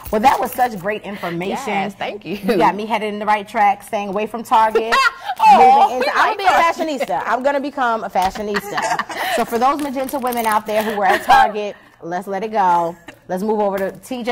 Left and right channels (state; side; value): identical; both; correlation 1.00